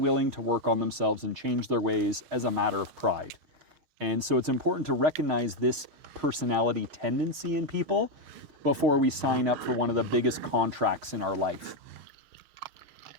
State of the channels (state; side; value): late; left; 6.5 ms